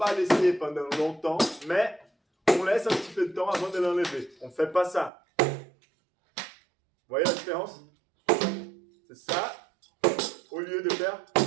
laisser pendant longtemps, mais on laisse un petit peu de temps avant de l'enlever. On ne fait pas ça. Vous voyez la différence? C'est ça, au lieu de faire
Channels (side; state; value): left; drops out; at 5.1 s